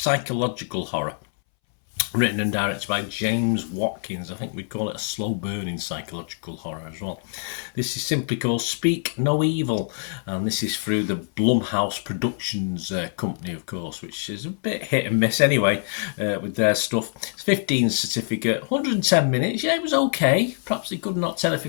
horror, written and directed by James Watkins. I think we'd call it a slow-burning psychological horror as well. This is simply called Speak No Evil, and this is through the Blumhouse Productions company, of course, which is a bit hit and miss anyway with their stuff. It's 15 certificate, 110 minutes. Yeah, it was okay. Perhaps they could knock 10 or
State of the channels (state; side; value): silent; right; 62 dB below the other